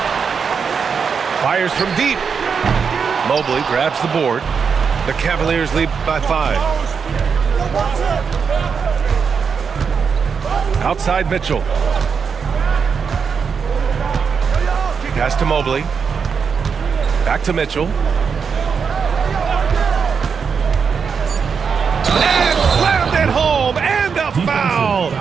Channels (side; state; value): left; quieter; 6.1 dB